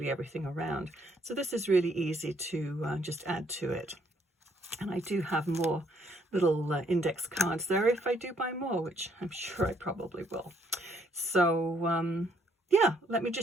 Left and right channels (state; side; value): normal; both; correlation 0.68